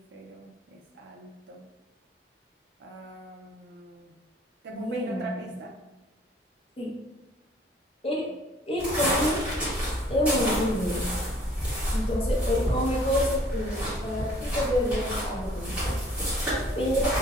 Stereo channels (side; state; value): both; normal; correlation 0.56